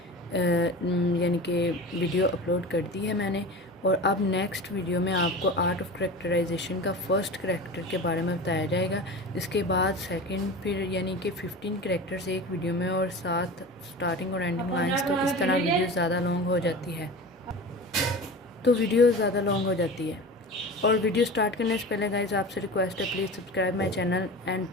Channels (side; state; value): both; normal; correlation 0.32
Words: یعنی کہ ویڈیو اپلوڈ کر دی ہے میں نے. اور اب نیکسٹ ویڈیو میں آپ کو آرٹ آف کریکٹرائزیشن کا فرسٹ کریکٹر کے بارے میں بتایا جائے گا. اس کے بعد سیکنڈ، پھر یعنی کہ 15 کریکٹرز ایک ویڈیو میں اور ساتھ اسٹارٹنگ اور اینڈنگ لائنس. تو اس طرح ویڈیو زیادہ لانگ ہو جاتی ہے اور ویڈیو سٹارٹ کرنے سے پہلے گائز آپ سے ریکویسٹ ہے please subscribe my channel and